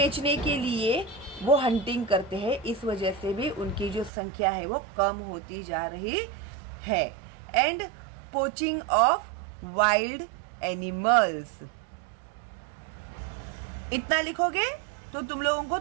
के लिए वो हंटिंग करते हैं, इस वजह से भी उनकी जो संख्या है वो कम होती जा रही है। And poaching of wild animals, इतना लिखोगे तो तुम लोगों को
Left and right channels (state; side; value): drops out; left; at 4.1 s